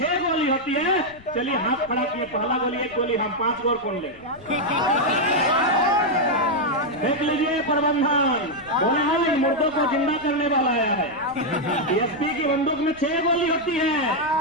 गोली होती है, चलिए हाथ खड़ा किए, पहला गोली 1 गोली, हम 5 गोल कौन ले। देख लीजिए प्रबंधन, बोले हाँ इन मुर्दों को जिंदा करने वाला आया है। डीएसपी की बंदूक में 6 गोली होती है।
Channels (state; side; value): noise; left; rumble, 23 dB below the sound